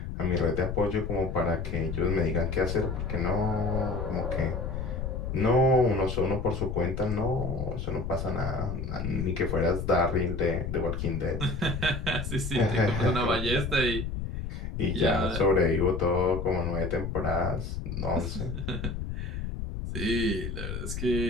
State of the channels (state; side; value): noise; left; rumble, 4 dB below the sound